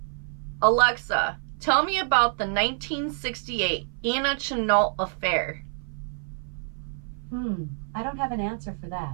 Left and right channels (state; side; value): silent; left; 56 dB below the other